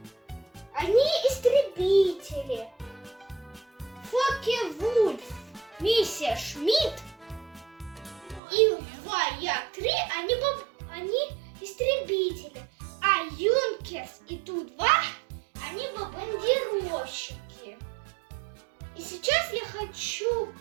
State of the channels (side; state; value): left; drops out; at 8.4 s